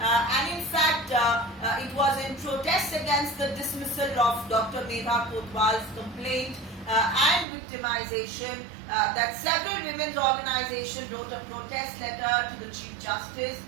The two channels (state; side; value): drops out; left; at 7.5 s